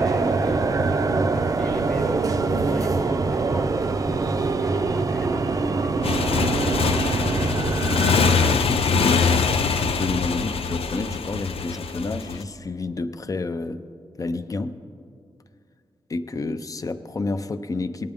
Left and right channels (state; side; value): normal; both; correlation 0.64